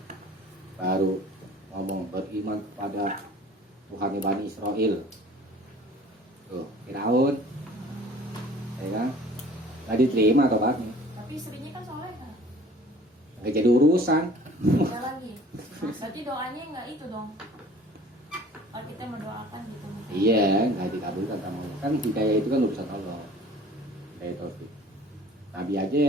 baru ngomong beriman kepada Tuhan Bani Israel. Tuh, Firaun, ya kan? Nggak diterima tobatnya. Tapi istrinya kan soleh kan? Nggak jadi urusan. Ada lagi. Berarti doanya nggak itu dong. Kalau kita mendoakan gitu. Iya, nggak dikabulkan sama Allah. Kan hidayah itu kan urusan Allah. Hidayah taufik. Nabi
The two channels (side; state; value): both; normal; correlation 0.48